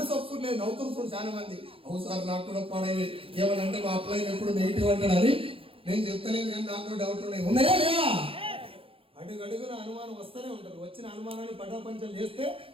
ఒప్పుకోలేదు. నవ్వుతున్నారు చాలా మంది. అవును సార్ నాకు కూడా పడేది ఏమనంటే మా అప్లై ఎప్పుడు నెగిటివ్ అంటాడు. అది నేను చెప్తలేదు, కానీ నాకు డౌట్ ఉన్నాయా లేవా? అడుగున అనుమానం వస్తూనే ఉంటుంది. వచ్చిన అనుమానాన్ని పటాపంచలు చేస్తే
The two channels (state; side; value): late; left; 0.27 ms